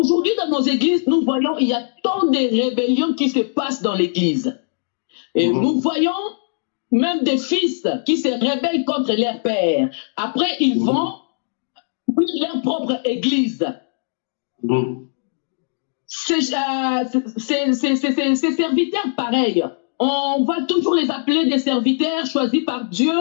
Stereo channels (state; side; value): silent; right; digital silence